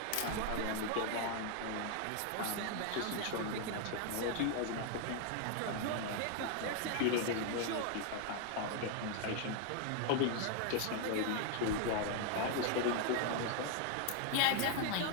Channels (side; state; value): both; different; correlation 0.00